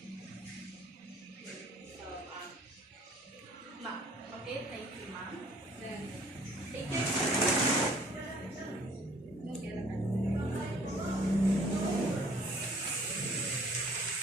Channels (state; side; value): normal; both; correlation 0.56